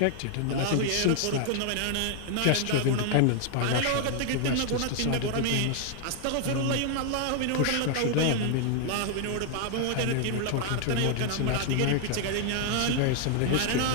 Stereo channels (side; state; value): both; different; correlation 0.00